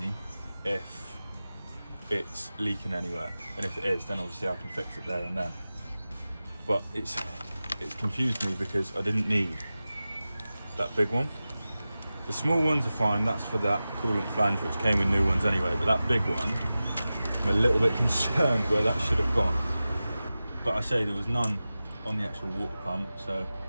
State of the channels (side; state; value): both; inverted; correlation -0.95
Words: if it's leaking anywhere, and if it is, then obviously I can fix it there and then. But it's confused me because I didn't need that big one. The small ones are fine, that's for that coolant flange which came with new ones anyway, but that big one, I'm a little bit concerned where that should have gone. But I say there was none on the actual water pump, so